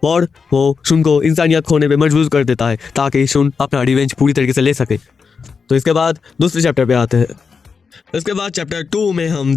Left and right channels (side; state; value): right; quieter; 5.5 dB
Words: और वो शुन को इंसानियत खोने पे मजबूर कर देता है ताकि शुन अपना रिवेंज पूरी तरीके से ले सके। तो इसके बाद दूसरे चैप्टर पे आते हैं। इसके बाद चैप्टर 2 में हम